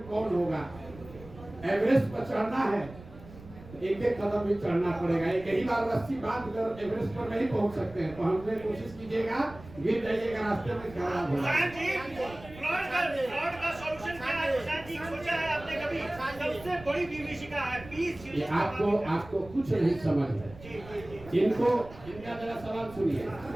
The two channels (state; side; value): noise; right; rumble, 18 dB below the sound